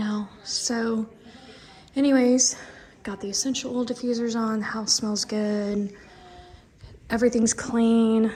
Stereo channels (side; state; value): both; identical; correlation 1.00